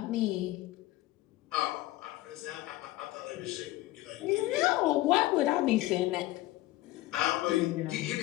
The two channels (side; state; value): right; quieter; 17.0 dB